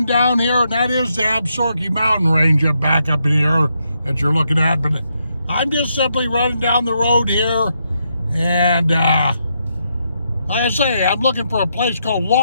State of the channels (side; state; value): both; inverted; correlation -0.80